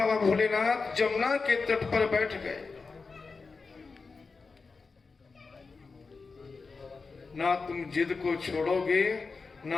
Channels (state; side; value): quieter; right; 4.4 dB